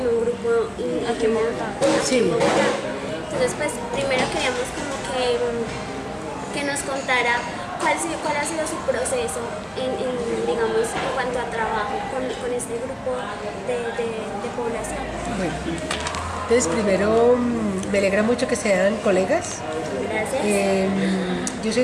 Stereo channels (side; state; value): both; identical; correlation 1.00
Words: un grupo aquí en Bogotá. Sí. Entonces, pues, primero queríamos como que nos contara cuál ha sido su proceso digamos, en cuanto a trabajo con este grupo de población. Bueno, entonces primero me alegra mucho que sean colegas. Gracias. Yo soy